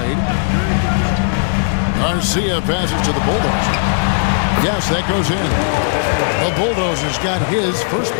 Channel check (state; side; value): silent; right; digital silence